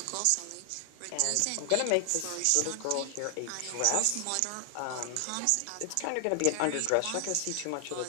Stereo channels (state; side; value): different; both; correlation 0.00